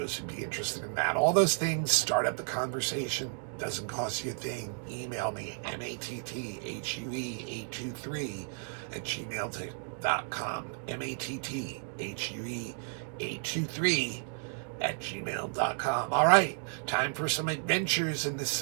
who'd be interested in that. All those things start up the conversation. Doesn't cost you a thing. Email me, matthuey823@gmail.com. matthuey823@gmail.com. All right, time for some adventures in the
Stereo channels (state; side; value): silent; left; 56 dB below the other